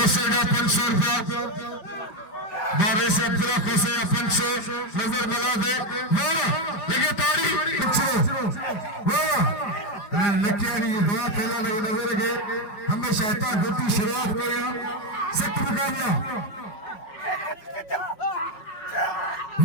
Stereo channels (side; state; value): right; late; 4.9 ms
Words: 500 रुपया बारे से अब्दुल्ला खोसेगा 500 नजर मिला दे लेके ताड़ी लकियारी दवा पहला लगे नजर के हमेशा इतना गुट्टी शुरुआत करेगा सख्त मुकाबला